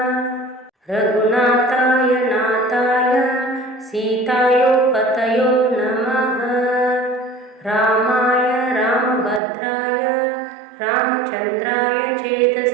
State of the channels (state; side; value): drops out; left; at 9.4 s